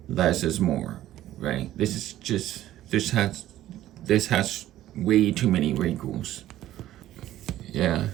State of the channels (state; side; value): quieter; left; 13.7 dB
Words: less is more, right? This has way too many wrinkles. Yeah,